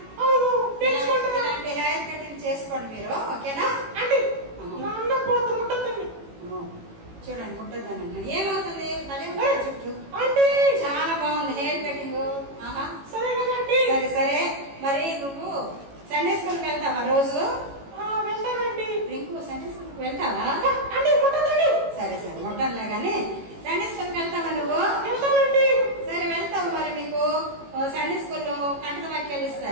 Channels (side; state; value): left; late; 18 ms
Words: ఇలాంటి హెయిర్ కటింగ్ చేసుకోండి మీరు, ఓకేనా? చూడండి, ముట్టద్దానండి. ఏమవుతుంది? చుట్టూ చాలా బాగుంది హెయిర్ కటింగ్. సరే సరే, మరి నువ్వు సండే స్కూల్కి వెళ్తావా రోజు? రింకు, సండే స్కూల్కి వెళ్తావా? సరే సరే, ముట్టనులే గానీ సండే స్కూల్కి వెళ్తావా నువ్వు? సరే వెళ్తావు. మరి మీకు సండే స్కూల్లో కంట వాక్యాలు